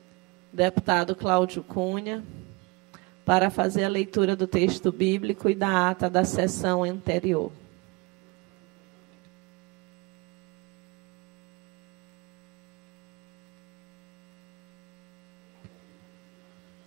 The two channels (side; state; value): left; quieter; 25.9 dB